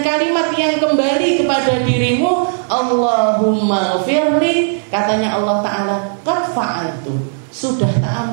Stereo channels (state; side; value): silent; left; digital silence